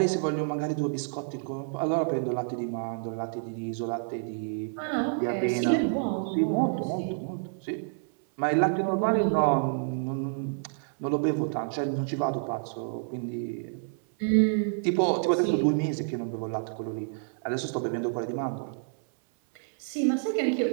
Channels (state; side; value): silent; left; 59 dB below the other